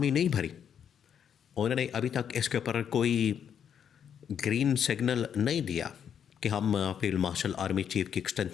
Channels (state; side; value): quieter; right; 8.3 dB